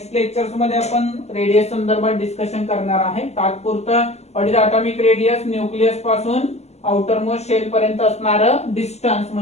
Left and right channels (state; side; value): late; right; 0.32 ms